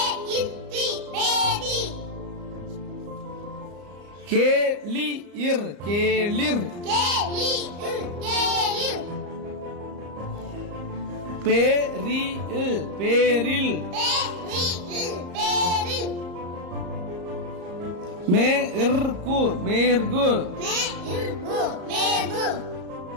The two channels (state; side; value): late; left; 34 ms